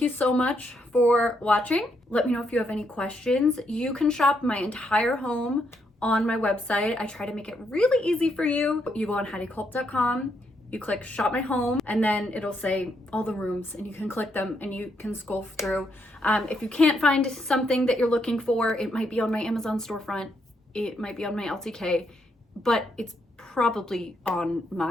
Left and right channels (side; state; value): both; normal; correlation 0.77